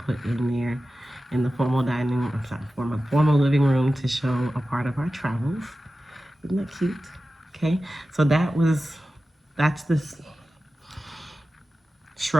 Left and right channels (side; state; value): both; normal; correlation 0.94